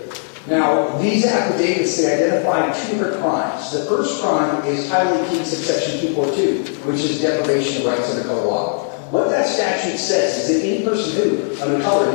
Now, these affidavits, they identify two different crimes. The first crime is Title 18, subsection 242, which is deprivation of rights under color law. What that statute says is that any person who, under color of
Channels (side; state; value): right; silent; digital silence